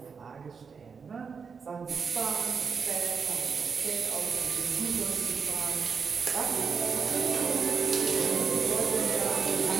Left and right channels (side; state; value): left; quieter; 5.7 dB